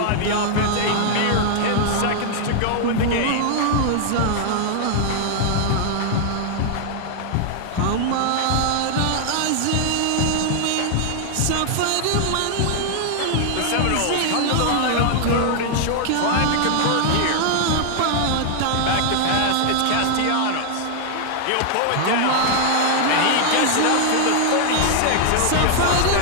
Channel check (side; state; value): both; different; correlation 0.00